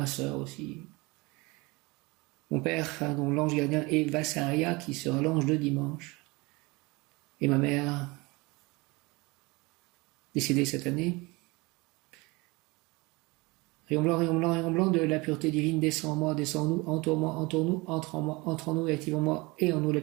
sœur aussi. Mon père, dont l'ange gardien est Vassaria, qui sera l'ange de dimanche. Et ma mère, décédée cette année. Rayon blanc de la pureté divine descend en moi, descend en nous, entoure-moi, entoure-nous, entre en moi, entre en nous et active en moi et en nous la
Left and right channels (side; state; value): left; quieter; 24.6 dB